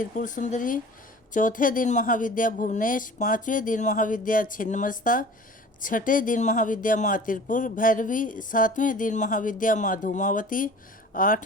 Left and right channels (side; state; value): both; normal; correlation 0.43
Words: सुंदरी, चौथे दिन महाविद्या भुवनेश, 5वें दिन महाविद्या छिन्नमस्ता, 6ठे दिन महाविद्या माँ त्रिपुर भैरवी, 7वें दिन महाविद्या माँ धूमावती,